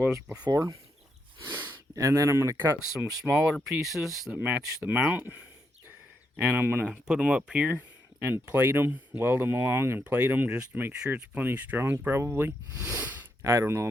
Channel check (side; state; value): both; normal; correlation 0.80